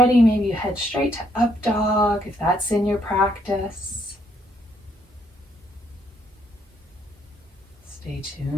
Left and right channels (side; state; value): both; normal; correlation 0.71